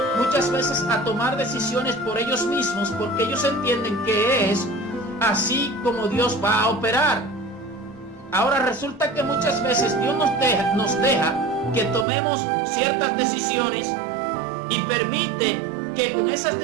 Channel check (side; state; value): left; drops out; at 12.1 s